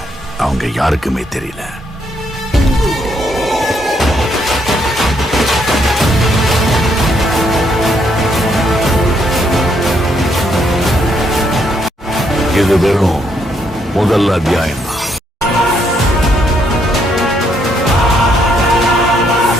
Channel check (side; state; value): both; normal; correlation 0.73